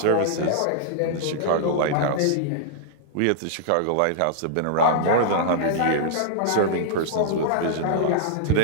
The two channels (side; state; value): both; different; correlation -0.01